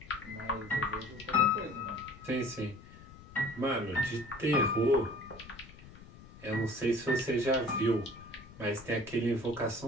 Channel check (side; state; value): left; noise; rumble, 19 dB below the sound